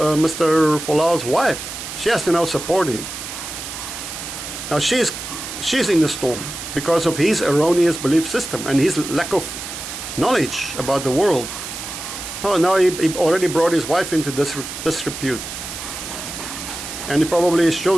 Mr. Folau's wife, she has to now support him. Now she's in the storm because of his erroneous belief system and his lack of knowledge about the world. Now he already brought his wife into disrepute. And probably his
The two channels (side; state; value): right; noise; hiss, 8 dB below the sound